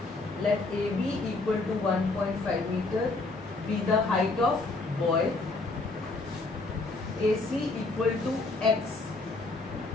Let AB equal to 1.5 meter be the height of boy. AC equal to X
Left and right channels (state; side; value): quieter; right; 3.3 dB